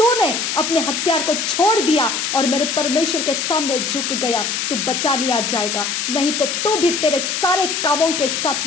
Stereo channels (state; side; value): noise; left; hiss, 1 dB below the sound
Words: अपने हथियार को छोड़ दिया और मेरे परमेश्वर के सामने झुक गया तो बचा लिया जाएगा, नहीं तो तू भी तेरे सारे कामों के